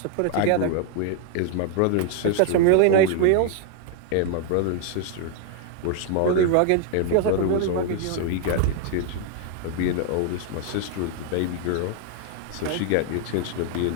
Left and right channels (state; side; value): different; both; correlation 0.00